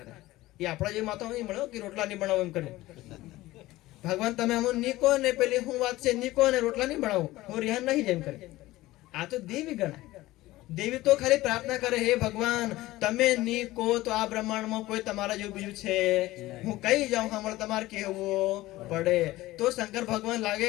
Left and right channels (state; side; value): quieter; right; 17.6 dB